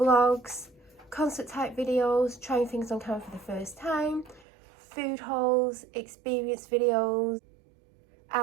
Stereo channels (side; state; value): left; drops out; at 4.5 s